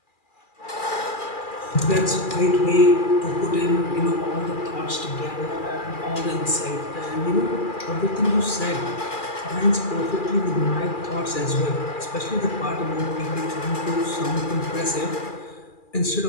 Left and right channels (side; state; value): right; late; 2.4 ms